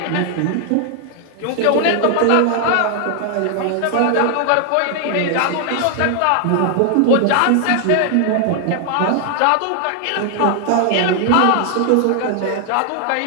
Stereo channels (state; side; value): different; both; correlation 0.00